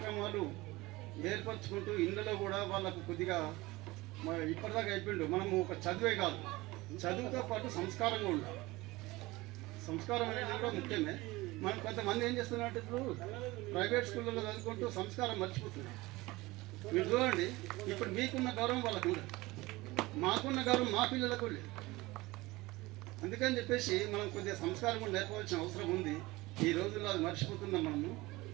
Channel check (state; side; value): quieter; left; 20.7 dB